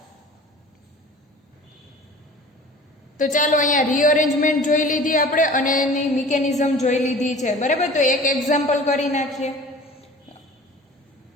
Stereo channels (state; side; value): normal; both; correlation 0.43